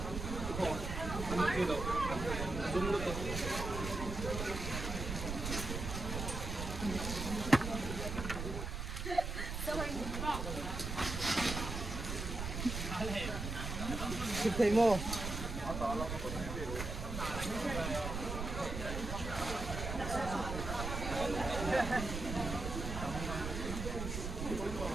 chụp thấy mô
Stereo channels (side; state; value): right; noise; rumble, 4 dB below the sound